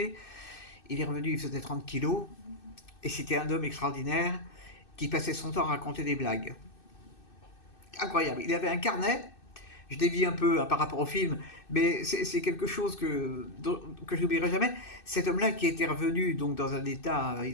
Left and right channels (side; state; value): right; late; 2.6 ms